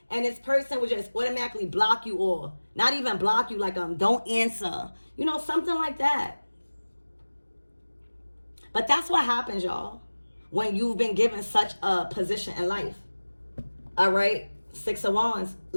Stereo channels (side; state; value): both; inverted; correlation -1.00